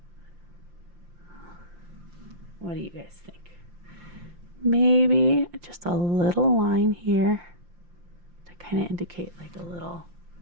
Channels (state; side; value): late; left; 5.7 ms